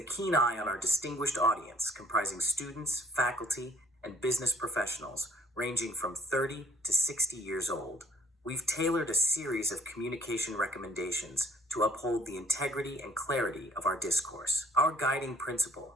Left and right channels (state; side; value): normal; both; correlation 0.57